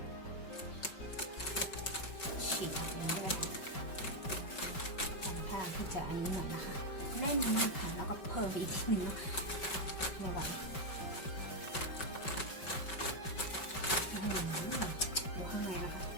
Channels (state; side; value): late; right; 5.3 ms